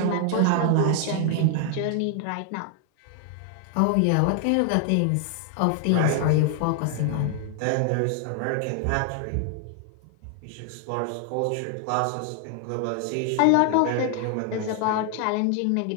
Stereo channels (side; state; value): both; different; correlation 0.00